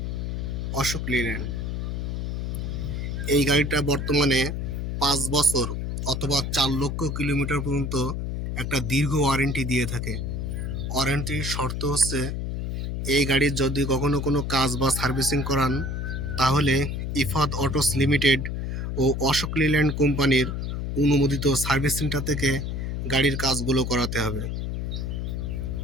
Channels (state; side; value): noise; left; hum, 3 dB below the sound